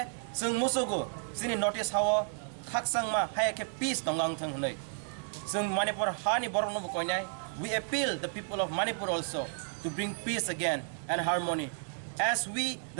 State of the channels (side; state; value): left; silent; 56 dB below the other